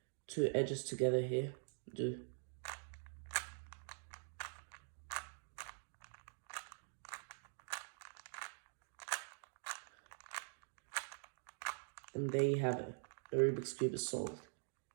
two edges together here. And there you have it. The Rubik's Cube is solved.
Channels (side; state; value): left; silent; digital silence